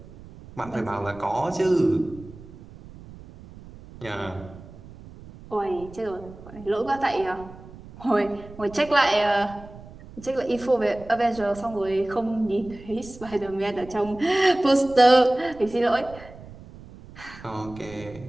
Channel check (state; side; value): noise; right; rumble, 18 dB below the sound